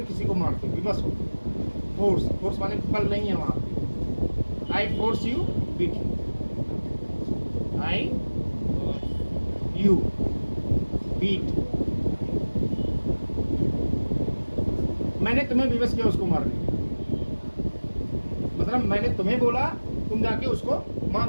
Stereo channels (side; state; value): both; inverted; correlation -1.00